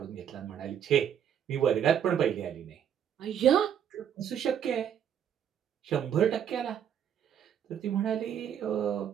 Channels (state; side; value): quieter; left; 9.0 dB